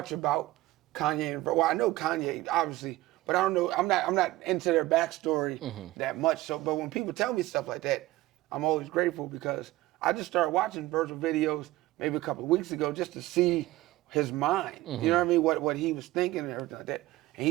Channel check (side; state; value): left; quieter; 17.7 dB